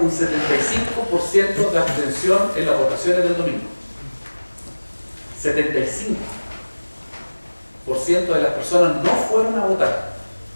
un 75% de abstención en las votaciones del domingo. 75% de las personas no fueron a votar.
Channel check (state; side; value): inverted; both; correlation -1.00